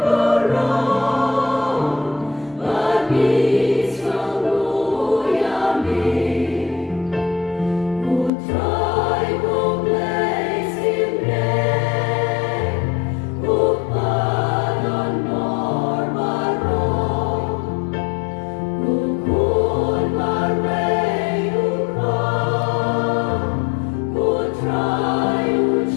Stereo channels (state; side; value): drops out; right; at 8.3 s